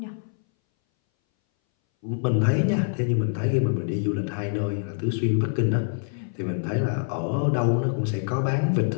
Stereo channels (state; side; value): silent; right; 60 dB below the other